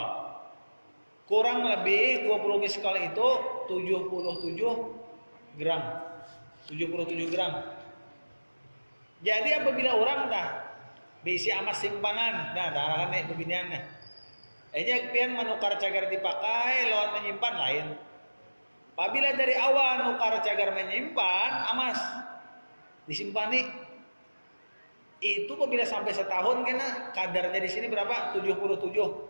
Kurang lebih 20 miskol itu 77 gram. 77 gram. Jadi apabila orang dah bisi emas simpanan, nah darahkan nih beginiannya. Enya pian menukar cagar dipakai lawan menyimpan lain. Apabila dari awal nukar cagar menyimpan emas disimpan nih, itu apabila sampai setahun kena kadarnya di sini berapa?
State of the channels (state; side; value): inverted; both; correlation -1.00